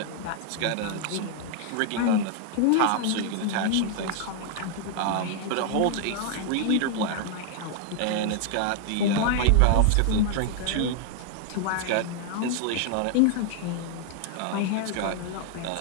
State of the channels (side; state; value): both; different; correlation 0.00